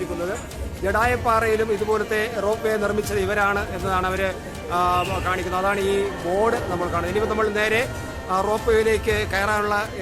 ജഡായുപ്പാറയിലും ഇതുപോലത്തെ റോപ്പ് വേ നിർമ്മിച്ചത് ഇവരാണ് എന്നതാണ് അവർ കാണിക്കുന്നത്. അതാണ് ഈ ബോർഡ് നമ്മൾ കാണുന്നത്. ഇനിയിപ്പോൾ നമ്മൾ നേരെ റോപ്പ് വേയിലേക്ക് കയറാനുള്ള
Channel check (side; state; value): both; identical; correlation 1.00